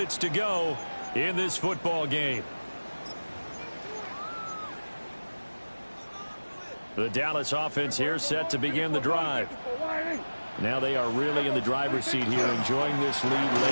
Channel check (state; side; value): inverted; both; correlation -1.00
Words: to go in this football game. The Dallas offense here set to begin the drive. Now they are really in the driver's seat here, enjoying this lead